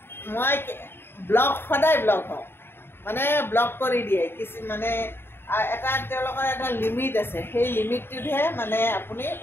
মই সদায় ব্লক হওঁ, মানে ব্লক কৰি দিয়ে মানে তেওঁলোকৰ এটা লিমিট আছে। সেই লিমিটটোতহে মানে আপুনি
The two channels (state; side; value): late; right; 0.11 ms